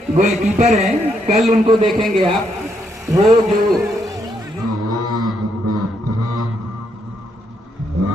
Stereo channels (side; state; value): both; normal; correlation 0.76